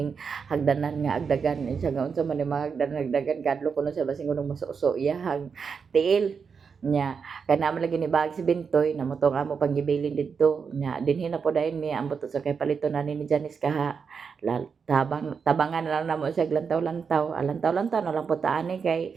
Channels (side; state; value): left; quieter; 5.9 dB